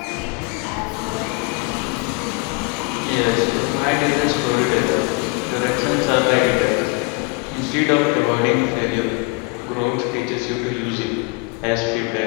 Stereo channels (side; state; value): right; quieter; 28.6 dB